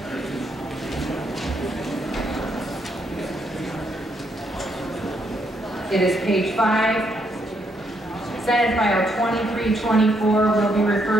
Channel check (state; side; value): normal; both; correlation 0.75